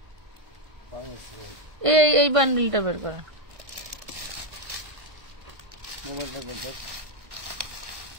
এই বান্ডিলটা বের করেন,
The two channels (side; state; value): left; late; 1.5 ms